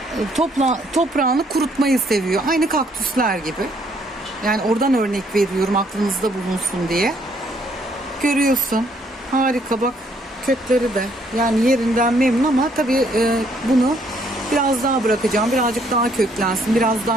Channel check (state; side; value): normal; both; correlation 0.67